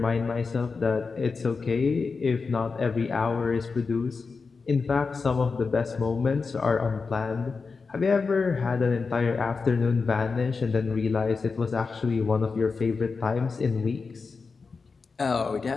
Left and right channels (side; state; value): right; quieter; 4.7 dB